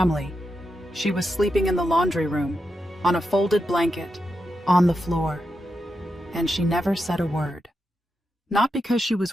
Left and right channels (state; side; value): normal; both; correlation 0.87